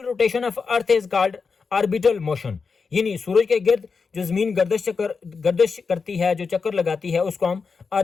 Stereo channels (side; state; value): right; quieter; 5.1 dB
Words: rotation of earth is called orbital motion, यानी सूरज के गिर्द जो जमीन गर्दिश करती है, जो चक्कर लगाती है, उसको हम